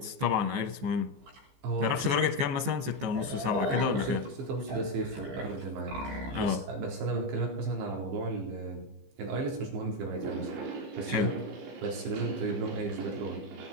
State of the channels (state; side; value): late; left; 15 ms